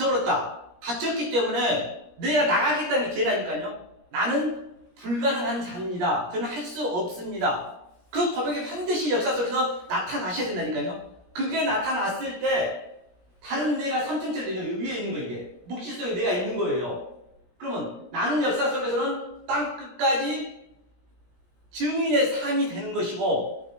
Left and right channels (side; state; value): left; late; 17 ms